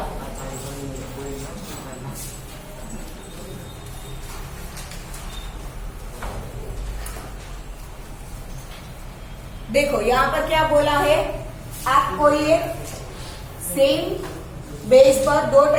देखो यहाँ पर क्या बोला है, आप कोई एक सेम बेस पर दो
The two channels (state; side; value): identical; both; correlation 1.00